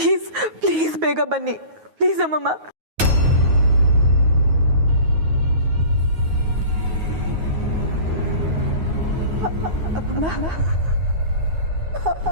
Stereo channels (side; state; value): left; late; 9.4 ms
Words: ಪ್ಲೀಸ್ ಬೇಗ ಬನ್ನಿ ಪ್ಲೀಸ್ ಅಮ್ಮಮ್ಮ. ಅಮ್ಮಮ್ಮ